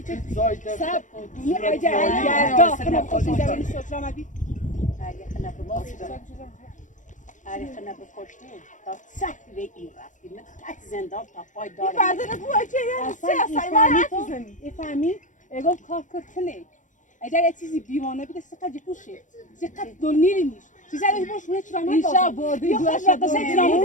سب دونی اجا خنا خوشی دارن شرامتی خنا بکشتی تا سخت به این رفتی من تک زندان تا پای دارم فردا بو اجا فهمی اگه کار کنه اگر یه چیزی بیوانه بیده سقط جپوشه سقط دونی نیست چیزی رو باشه چرامت اینجا بودی دو تا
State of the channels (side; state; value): right; late; 0.37 ms